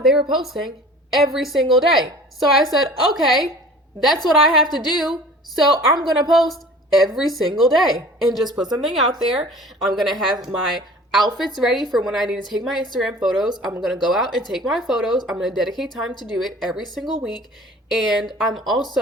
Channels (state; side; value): normal; both; correlation 0.44